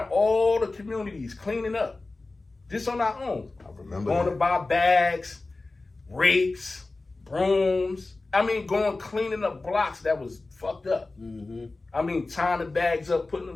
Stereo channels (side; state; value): right; quieter; 3.3 dB